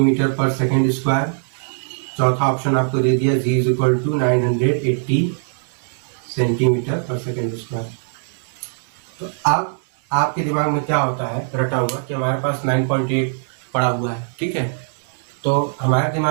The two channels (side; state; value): left; silent; digital silence